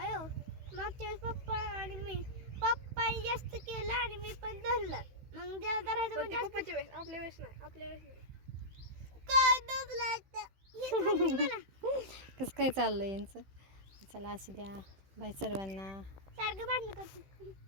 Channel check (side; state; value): left; late; 15 ms